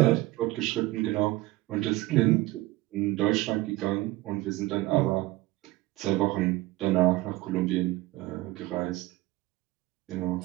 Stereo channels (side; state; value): left; quieter; 19.0 dB